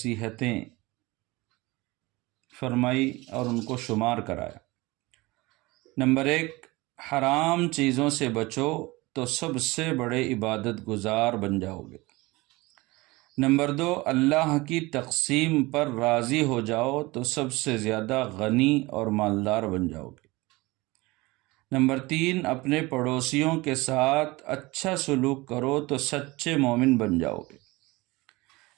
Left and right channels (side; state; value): left; quieter; 22.1 dB